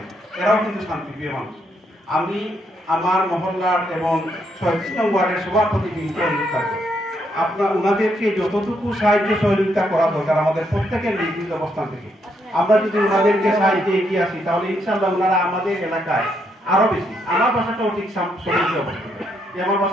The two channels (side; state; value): both; normal; correlation 0.76